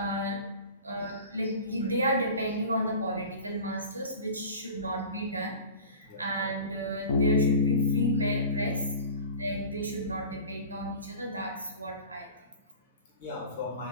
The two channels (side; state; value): both; inverted; correlation -0.38